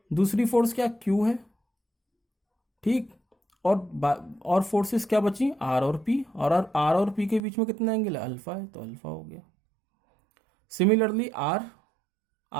दूसरी फोर्स क्या, क्यू है। ठीक, और फोर्सेस क्या बची, आर और पी, और आर और पी के बीच में कितना एंगल है, अल्फा है, तो अल्फा हो गया। सिमिलरली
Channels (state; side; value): drops out; left; at 7.4 s